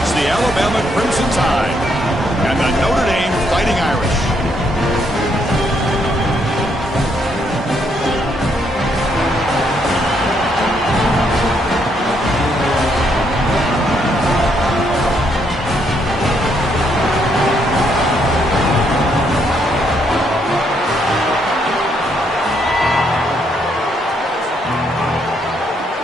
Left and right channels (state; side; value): normal; both; correlation 0.73